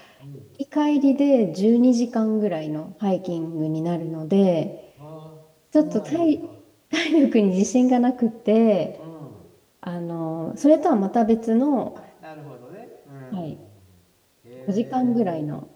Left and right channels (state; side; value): identical; both; correlation 1.00